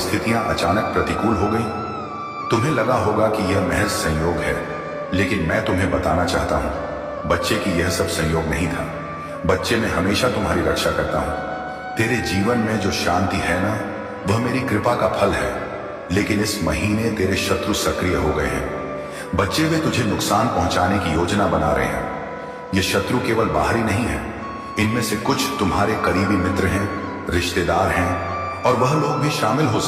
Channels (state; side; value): identical; both; correlation 1.00